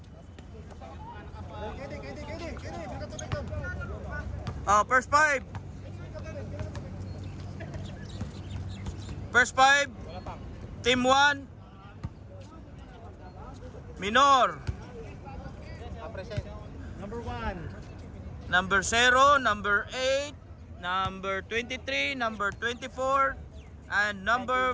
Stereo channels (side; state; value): both; identical; correlation 1.00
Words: First five. Team 1 Minor. Number 1. Number 0, number 8, number 23, number 24, and number